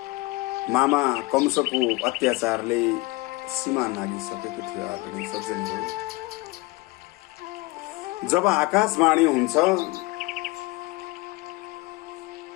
मामा कंसको अत्याचारले सीमा नागिसकेको थियो। आदरणीय सज्जनहरू, जब आकाशवाणी हुन्छ,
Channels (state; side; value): quieter; right; 22.7 dB